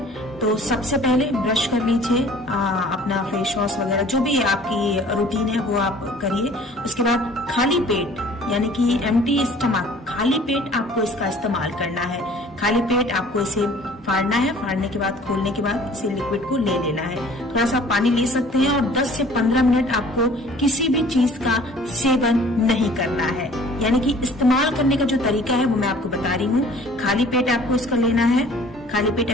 तो सबसे पहले ब्रश कर लीजिए, अपना फेस वॉश वगैरह जो भी आपकी रूटीन है वो आप करिए। उसके बाद खाली पेट, यानी कि एम्प्टी स्टमक, खाली पेट आपको इसका इस्तेमाल करना है। खाली पेट आपको इसे फाड़ना है। फाड़ने के बाद, खोलने के बाद इसे लिक्विड को ले लेना है। थोड़ा सा पानी ले सकते हैं और 10 से 15 मिनट आपको किसी भी चीज का सेवन नहीं करना है। यानी कि इस्तेमाल करने का जो तरीका है वो मैं आपको बता रही हूँ। खाली पेट आपको इसका लेना है। खाली पेट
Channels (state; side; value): normal; both; correlation 0.51